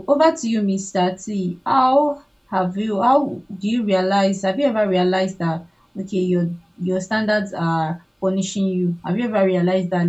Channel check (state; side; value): identical; both; correlation 1.00